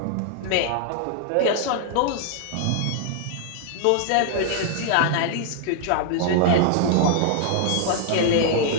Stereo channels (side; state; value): both; different; correlation -0.01